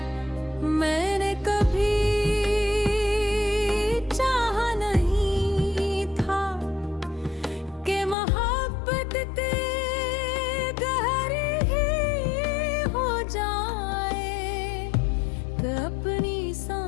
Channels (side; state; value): right; drops out; at 8.2 s